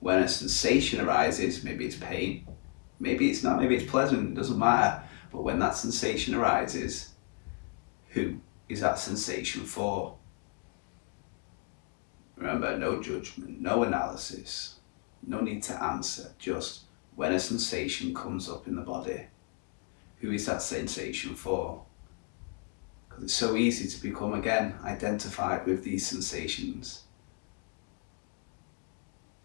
when a sensation arises. Maybe it's pain, maybe it's not, maybe it's pleasant, it doesn't matter. But when that sensation arises, who is that sensation for? Remember, no judgment, no analysis, no need to answer, just when a sensation comes up in the body, who is that sensation for? Because it's so easy to become, again, identified with these sensations.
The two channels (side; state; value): right; quieter; 35.4 dB